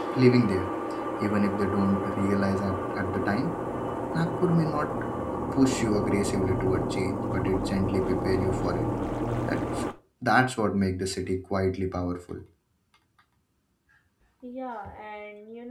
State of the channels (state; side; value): identical; both; correlation 1.00